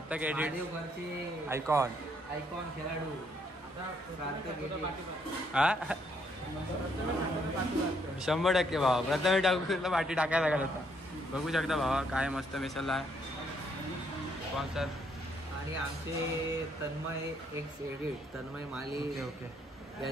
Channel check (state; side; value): normal; both; correlation 0.71